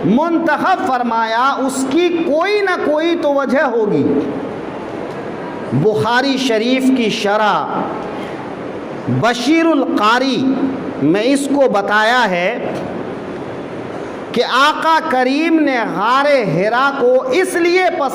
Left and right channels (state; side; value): identical; both; correlation 1.00